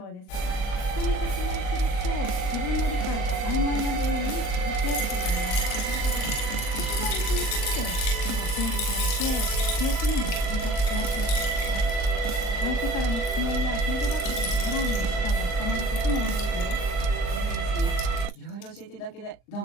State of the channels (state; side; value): late; right; 39 ms